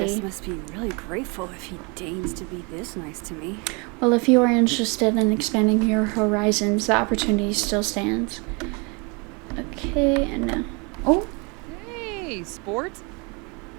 Lucas must be really grateful if he deigns to be this nice to me. Well, if you are interested in expanding your horizons, the opportunity still stands. Okay, and now... Oh! Hey, sport?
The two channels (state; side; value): quieter; left; 31.0 dB